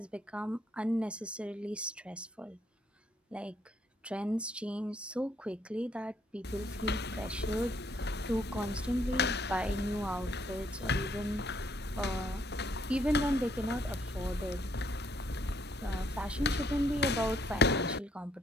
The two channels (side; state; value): both; normal; correlation 0.69